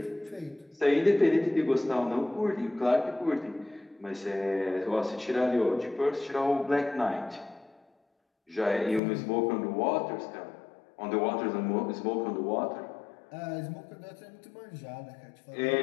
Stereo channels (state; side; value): drops out; right; at 9.0 s